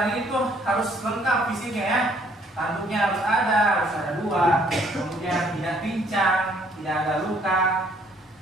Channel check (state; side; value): normal; both; correlation 0.63